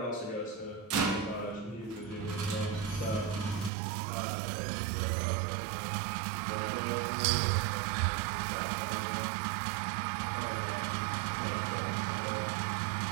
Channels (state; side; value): drops out; left; at 3.7 s